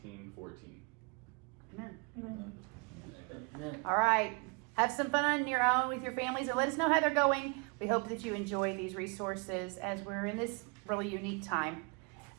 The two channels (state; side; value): quieter; left; 33.3 dB